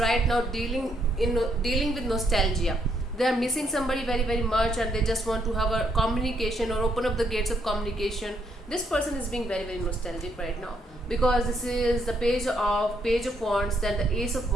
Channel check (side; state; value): both; normal; correlation 0.73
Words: now dealing with nostalgia. They are missing somebody very much, and they just want to have a communication or open up the gates of communication. This person is being very nostalgic right now because this is the Page of Wands, then the Ace of